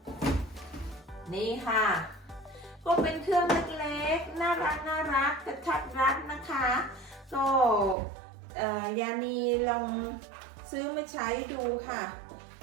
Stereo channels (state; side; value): drops out; left; at 8.0 s